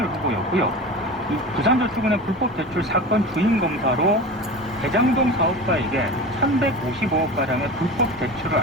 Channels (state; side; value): normal; both; correlation 0.31